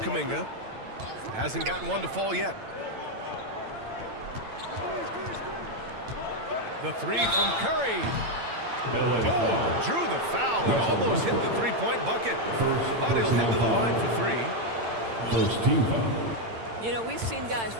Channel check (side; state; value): left; late; 8.9 ms